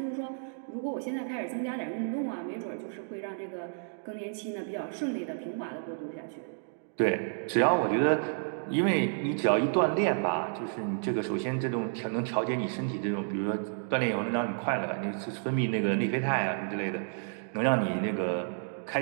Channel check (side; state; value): left; silent; digital silence